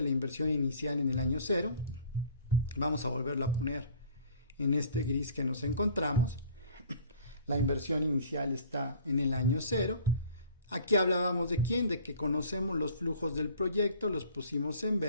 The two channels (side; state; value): both; inverted; correlation -0.50